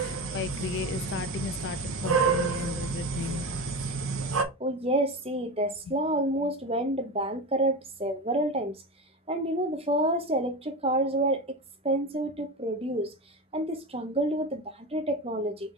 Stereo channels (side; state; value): both; normal; correlation 0.23